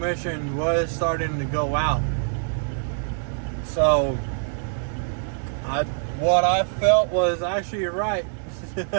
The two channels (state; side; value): silent; left; 62 dB below the other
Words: was starting to go out. So what I felt was actually right.